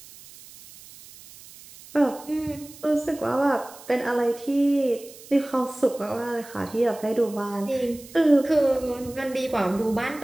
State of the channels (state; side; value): noise; right; hiss, 19 dB below the sound